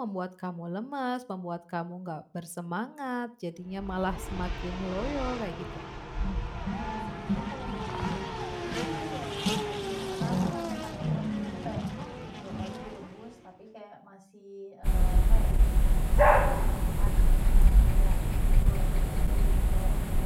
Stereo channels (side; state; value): both; identical; correlation 1.00